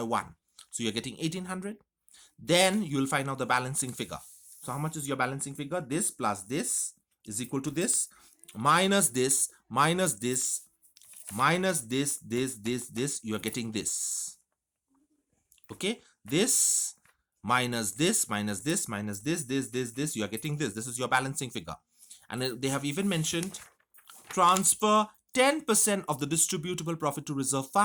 1. So you're getting 1,800. Then you will find out the balancing figure. So how much is your balancing figure? This plus this is equal to this minus this minus this minus this. You are getting this. Okay, this minus this minus this minus this. You are getting this. This is your balancing figure. And they have even mentioned transfer 10% of the distributable profit to reserve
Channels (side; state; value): both; identical; correlation 1.00